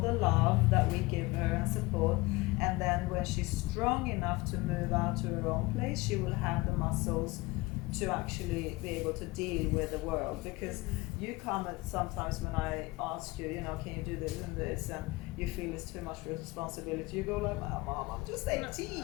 love that we give her and support, and then when she's strong enough to move out to her own place, she will have the muscles to actually be able to deal with the world. Because you come at sometimes when I ask you, you know, can you do this and this, and you feel it's too much responsibility, you go like, Mom, I'm just 18.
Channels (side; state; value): right; quieter; 22.2 dB